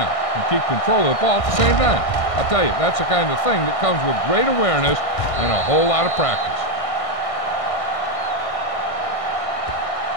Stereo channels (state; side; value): late; right; 1.6 ms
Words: and keep control of the ball at the same time. I'll tell you, that's the kind of thing that comes with great awareness and a whole lot of practice.